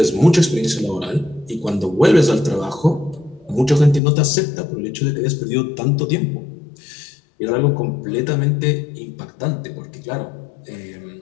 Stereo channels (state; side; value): drops out; right; at 4.0 s